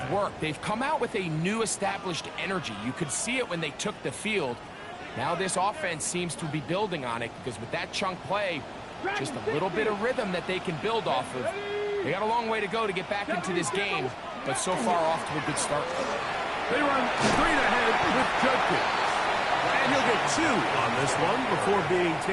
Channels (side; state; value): both; identical; correlation 1.00